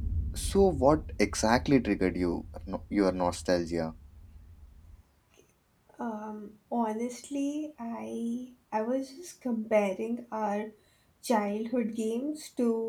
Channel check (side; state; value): both; identical; correlation 1.00